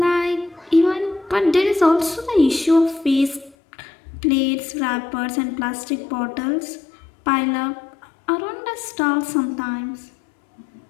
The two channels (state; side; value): drops out; right; at 3.6 s